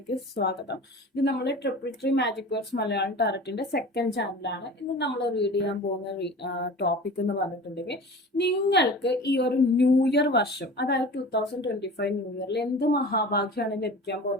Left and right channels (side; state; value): both; normal; correlation 0.38